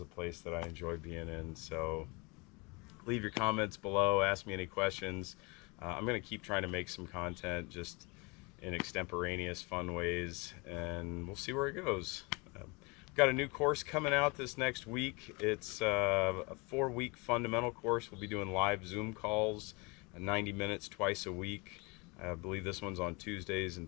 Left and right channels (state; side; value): quieter; right; 28.3 dB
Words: place that I enjoy being in. So leave your comments below, ask me any questions. I'm going to keep trying to make some content just in extemporaneous fun ways, and we'll see where it goes. Got a new course coming out this next week. It's a 4-week fundamental course. We'll be doing live Zoom calls, 90 minutes twice a week. I believe this one's on Tuesdays